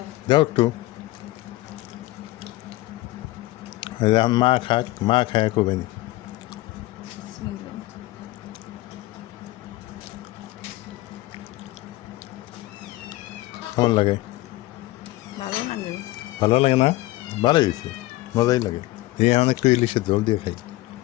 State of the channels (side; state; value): right; quieter; 18.8 dB